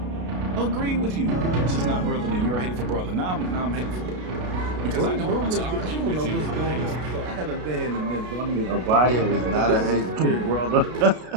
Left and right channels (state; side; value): late; left; 33 ms